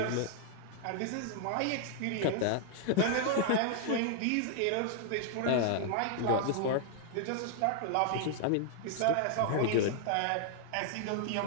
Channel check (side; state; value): both; different; correlation -0.01